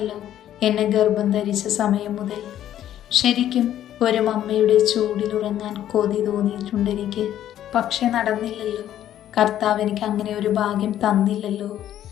എന്നെ ഗർഭം ധരിച്ച സമയം മുതൽ. ശരിക്കും ഒരു മമ്മയുടെ ചൂടിലുറങ്ങാൻ കൊതി തോന്നിയിട്ടുണ്ട് എനിക്ക്. പക്ഷെ നടന്നില്ലല്ലോ. കർത്താവ് എനിക്ക് അങ്ങനെ ഒരു ഭാഗ്യം തന്നില്ലല്ലോ.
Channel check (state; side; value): quieter; right; 11.6 dB